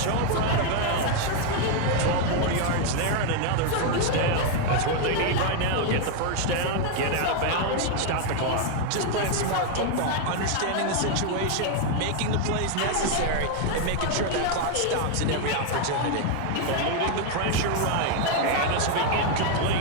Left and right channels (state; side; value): different; both; correlation 0.00